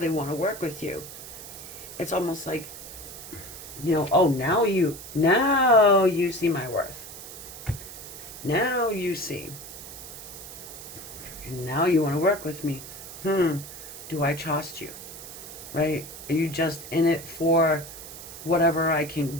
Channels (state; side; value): noise; right; hiss, 13 dB below the sound